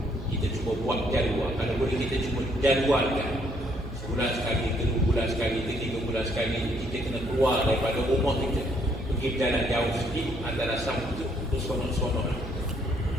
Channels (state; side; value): noise; right; hum, 10 dB below the sound